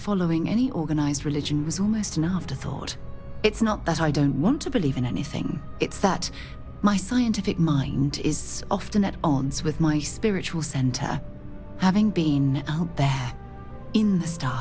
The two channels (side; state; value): both; identical; correlation 1.00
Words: any organized religion was almost an afterthought. It's not that I don't want to believe in anything, it's that my scientific mind is often at odds with my spiritual center. Having been out there, in the